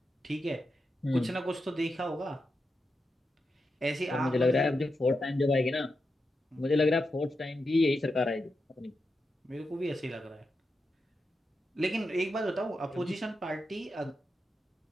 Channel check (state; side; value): normal; both; correlation 0.88